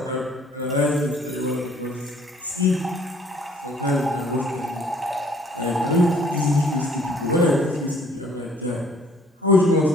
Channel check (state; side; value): normal; both; correlation 0.59